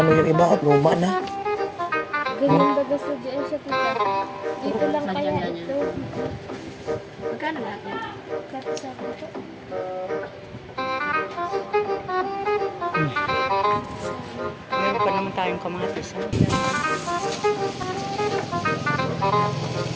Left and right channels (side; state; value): both; identical; correlation 1.00